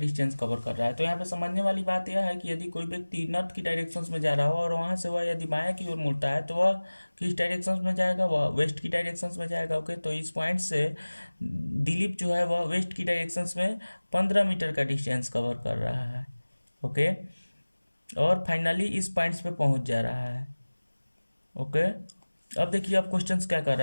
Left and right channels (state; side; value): inverted; both; correlation -1.00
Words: कवर कर रहा है। तो यहाँ पे समझने वाली बात यह है कि यदि कोई व्यक्ति नॉर्थ की डायरेक्शंस में जा रहा हो और वहां से वह यदि बायां की ओर मुड़ता है तो वह किस डायरेक्शंस में जाएगा, वह वेस्ट की डायरेक्शंस में जाएगा। ओके, तो इस पॉइंट से दिलीप जो है वह वेस्ट की डायरेक्शंस में 15 मीटर का डिस्टेंस कवर कर रहा है। ओके, और फाइनली इस पॉइंट्स पे पहुंच जा रहा है। ओके, अब देखिए अब क्वेश्चंस क्या कर